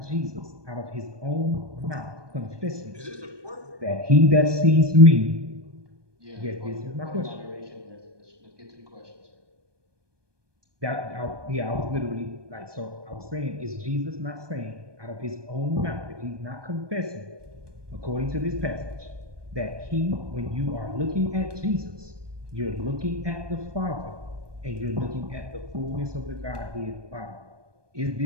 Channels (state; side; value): late; left; 1.2 ms